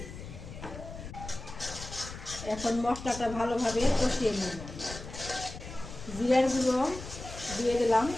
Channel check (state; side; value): noise; left; rumble, 11 dB below the sound